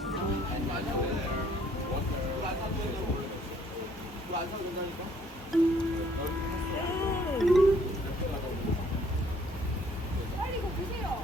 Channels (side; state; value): both; normal; correlation 0.62